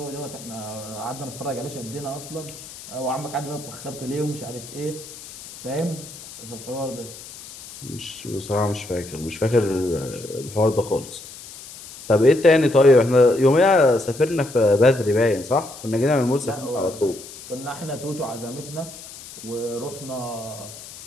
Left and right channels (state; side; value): noise; left; hiss, 15 dB below the sound